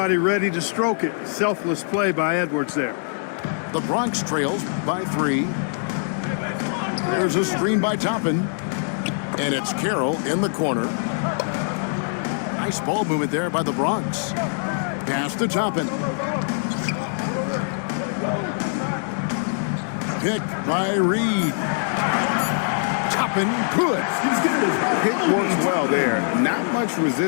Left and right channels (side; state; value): right; silent; digital silence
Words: ready to stroke it. Selfless play by Edwards there. The Bronx trails by 3. There's a screen by Toppin. And it's Carroll in the corner. Nice ball movement there by the Bronx. Pass to Toppin. Picked by Reed. Toppin good. Hit works well there. Not much